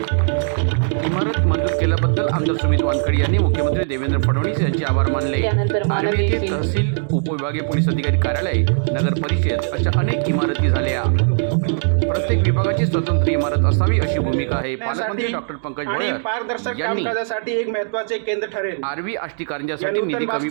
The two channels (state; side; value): silent; left; digital silence